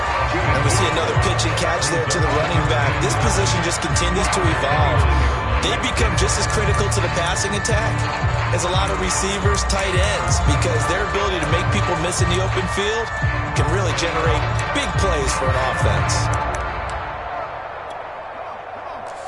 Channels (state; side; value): identical; both; correlation 1.00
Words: And we see another pitch and catch there to the running back. This position just continues to evolve. They become just as critical to the passing attack as a lot of receivers, tight ends, because their ability to make people miss in the open field can really generate big plays for an offense.